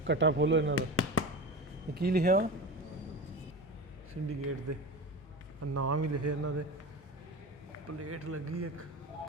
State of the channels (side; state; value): both; normal; correlation 0.27